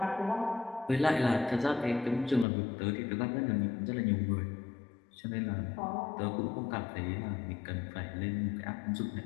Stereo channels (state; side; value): drops out; right; at 2.5 s